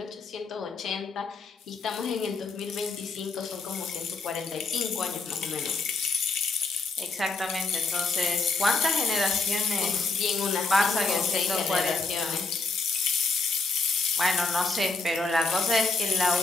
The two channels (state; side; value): quieter; right; 3.8 dB